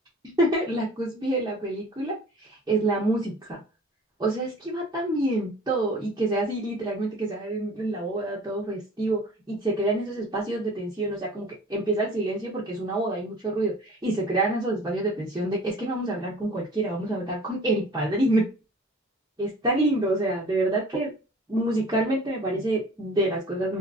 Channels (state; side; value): normal; both; correlation 0.46